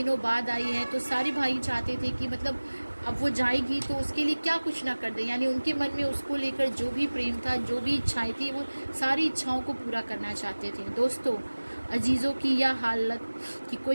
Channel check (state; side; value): inverted; both; correlation -1.00